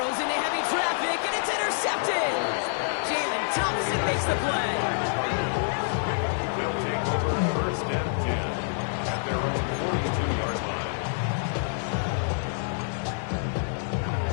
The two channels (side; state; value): right; silent; 60 dB below the other